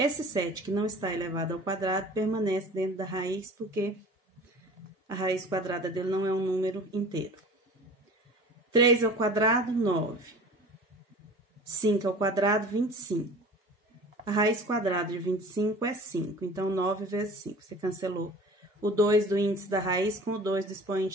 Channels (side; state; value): both; normal; correlation 0.42